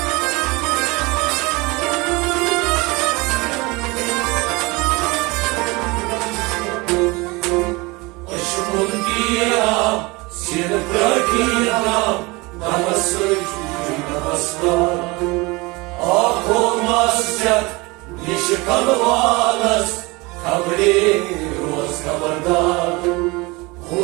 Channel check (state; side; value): quieter; left; 24.5 dB